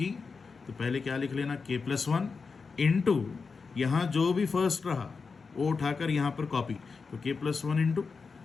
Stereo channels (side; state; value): right; quieter; 4.9 dB